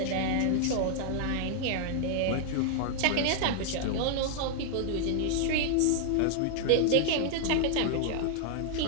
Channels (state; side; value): different; both; correlation -0.01